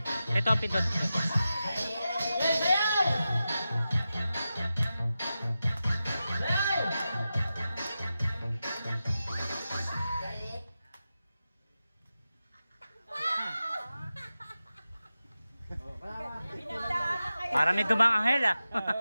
Ito ang pindot. Para may dumang anghel ah.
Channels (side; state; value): both; inverted; correlation -0.92